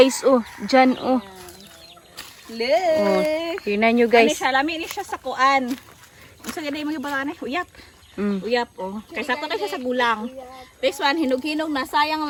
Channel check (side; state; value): both; identical; correlation 1.00